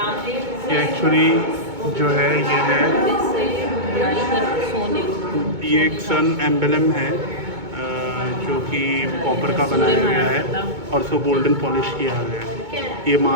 ये एक्चुअली जो है ये है, ये एक सन एम्बलम है जो कि कॉपर का बनाया गया है और उसको गोल्डन पॉलिश किया गया है। ये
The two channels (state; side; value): late; left; 2.2 ms